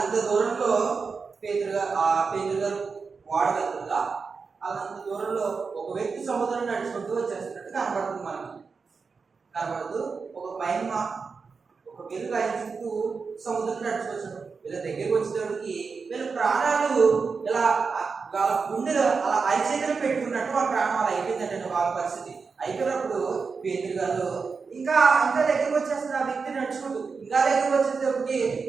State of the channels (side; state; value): left; quieter; 5.0 dB